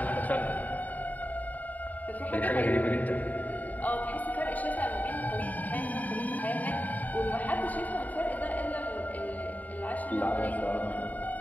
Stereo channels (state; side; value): late; right; 0.077 ms